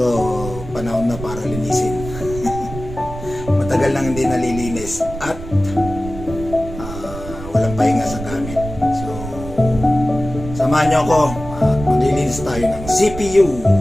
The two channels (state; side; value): noise; right; rumble, 11 dB below the sound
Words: panahon na para linisin. Matagal nang hindi nalilinis at walang pahinga sa gamit. So samahan niyo ako. Maglilinis tayo ng CPU.